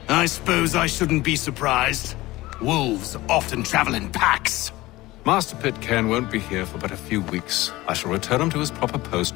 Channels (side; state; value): right; quieter; 18.8 dB